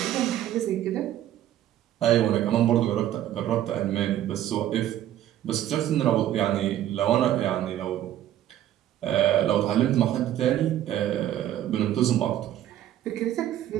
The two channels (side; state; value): left; quieter; 12.2 dB